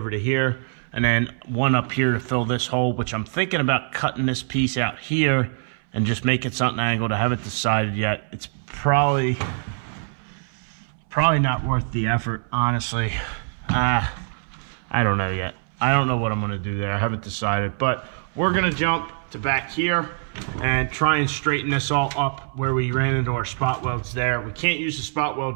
to here, and then one up here to fill this hole, which I'm thinking about cutting this piece out here and just making something angled. I haven't decided yet. It's probably not worth the effort, honestly. I don't know yet. I don't know what I'm gonna do there. I haven't decided, but we're gonna jump to back here and try and straighten this all up where we ran into our spot welds there. We can't use the spot weld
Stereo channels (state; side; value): silent; left; 63 dB below the other